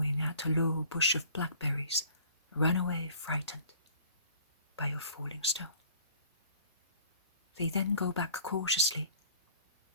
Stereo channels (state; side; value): inverted; both; correlation -0.53